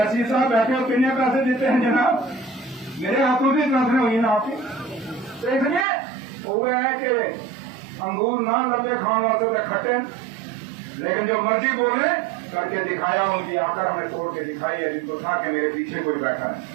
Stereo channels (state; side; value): drops out; left; at 5.9 s